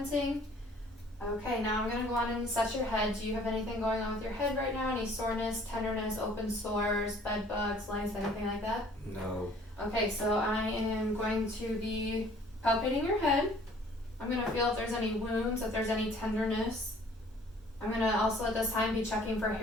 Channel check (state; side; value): normal; both; correlation 0.55